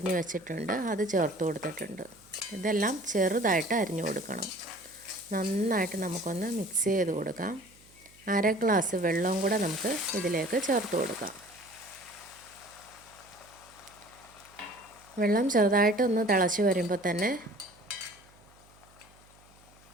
വെച്ചിട്ടുണ്ട്, അത് ചേർത്ത് കൊടുത്തിട്ടുണ്ട്. ഇതെല്ലാം ചെറുതായിട്ട് അരിഞ്ഞു കൊടുക്കണം. നന്നായിട്ട് നമുക്കൊന്ന് മിക്സ് ചെയ്ത് കൊടുക്കാം. 1/2 ഗ്ലാസ് വെള്ളവും കൂടെ നമുക്ക് ഇതിലേക്ക് ചേർത്ത് കൊടുക്കാം. വെള്ളം ചെറുതായിട്ടൊന്ന് തിളച്ച് വരുമ്പോൾ തന്നെ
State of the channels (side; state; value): right; noise; hum, 28 dB below the sound